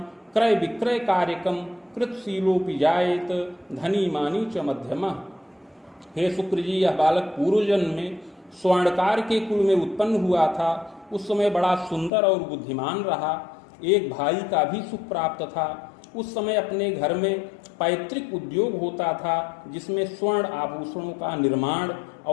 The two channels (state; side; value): drops out; right; at 12.1 s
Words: क्रय विक्रय कार्यकम कृतशीलोपि जायेत धनी मानी च मध्यमः। हे शुक्र जी, यह बालक पूर्व जन्म में स्वर्णकार के कुल में उत्पन्न हुआ था। उस समय बड़ा सुंदर और बुद्धिमान रहा। एक भाई का भी सुख प्राप्त था। उस समय अपने घर में पैतृक उद्योग होता था, जिसमें स्वर्ण आभूषणों का निर्माण